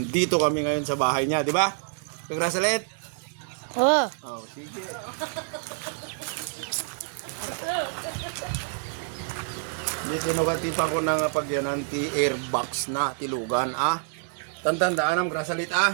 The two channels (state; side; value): silent; left; 60 dB below the other